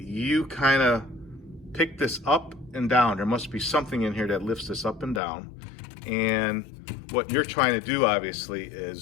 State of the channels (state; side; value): drops out; right; at 5.2 s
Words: kind of pick this up and down. There must be something in here that lifts this up and down, and what you're trying to do obviously